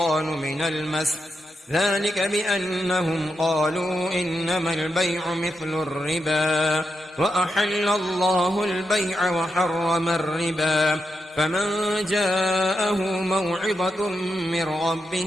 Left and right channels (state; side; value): normal; both; correlation 0.86